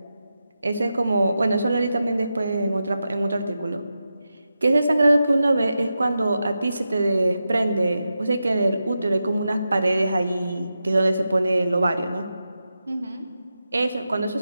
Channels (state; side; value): inverted; both; correlation -0.90